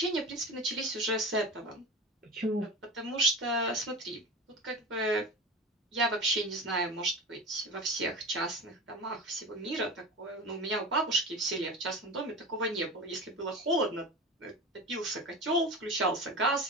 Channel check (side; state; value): both; normal; correlation 0.30